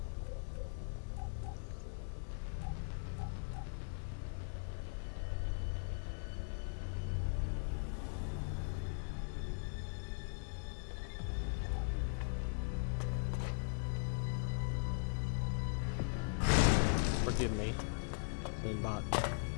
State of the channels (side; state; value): right; silent; 51 dB below the other